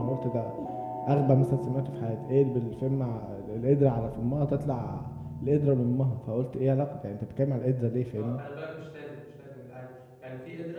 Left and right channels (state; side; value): identical; both; correlation 1.00